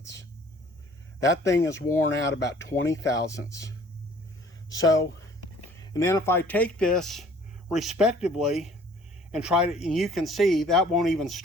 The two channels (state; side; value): normal; both; correlation 0.54